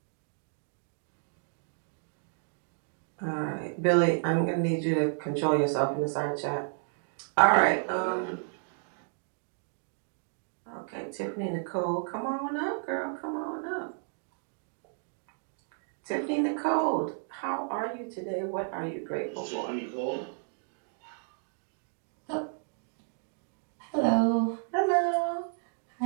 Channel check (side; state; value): left; silent; digital silence